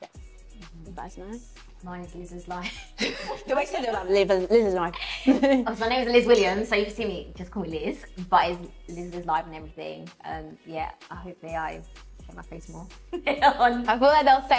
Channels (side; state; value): both; identical; correlation 1.00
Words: yes, that's nice. Mine is Liz's life. The way you said it was like Liz's life. Oh, so my name is Liz Williams, so you can see me, just call me Liz, but it's Liz's life and everything. Yeah, I hope I show my face more. I feel like they'll